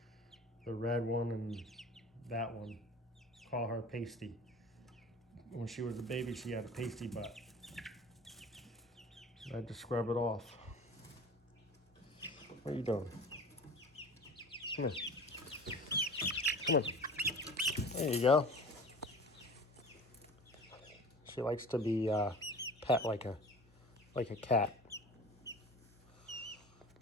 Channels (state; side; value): normal; both; correlation 0.39